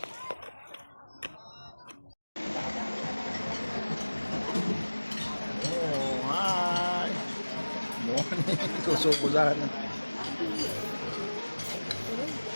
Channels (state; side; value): inverted; both; correlation -1.00